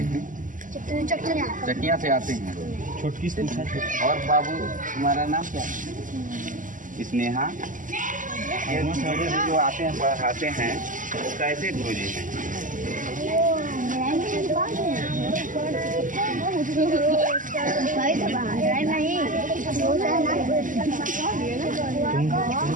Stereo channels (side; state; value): left; late; 0.38 ms